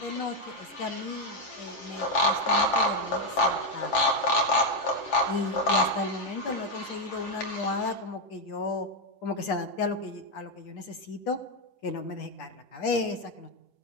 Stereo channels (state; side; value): late; right; 7.4 ms